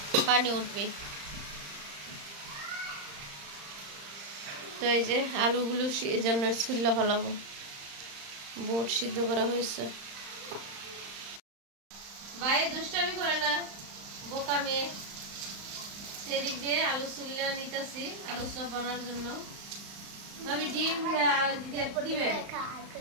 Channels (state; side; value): late; left; 35 ms